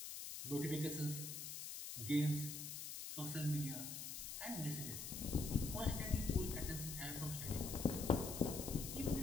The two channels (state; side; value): noise; left; hiss, 6 dB below the sound